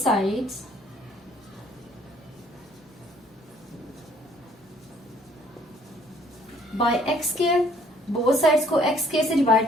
by x square. Both sides को x स्क्वायर से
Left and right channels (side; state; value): both; normal; correlation 0.61